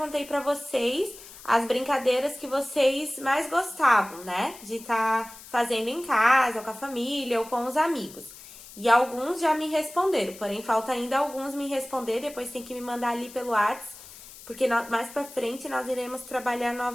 para vocês as brincadeiras que vocês mais gostavam, né? De estar fazendo em casa, ou com a família, ou com os amigos. E alguns já me responderam, porém falta ainda alguns me responder, depois tem que me mandar ali pelo WhatsApp, porque mais pra frente nós iremos trabalhar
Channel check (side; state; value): left; noise; hiss, 18 dB below the sound